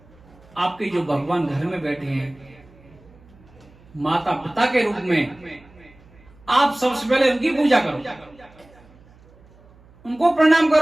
आपके जो भगवान घर में बैठे हैं, माता पिता के रूप में, आप सबसे पहले उनकी पूजा करो, उनको प्रणाम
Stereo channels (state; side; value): noise; right; hum, 27 dB below the sound